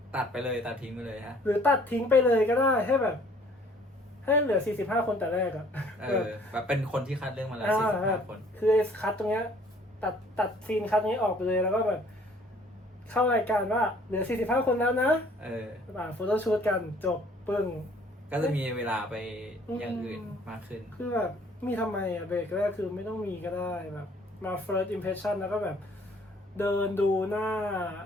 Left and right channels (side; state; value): both; normal; correlation 0.57